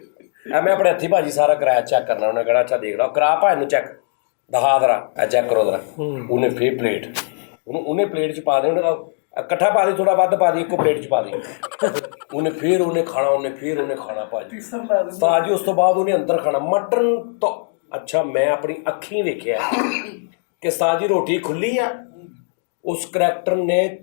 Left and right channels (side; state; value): right; silent; 66 dB below the other